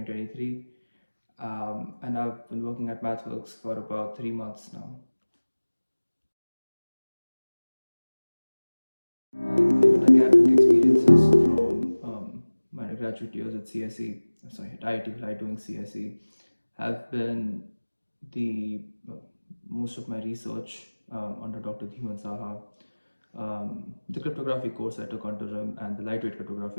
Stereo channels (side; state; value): both; inverted; correlation -1.00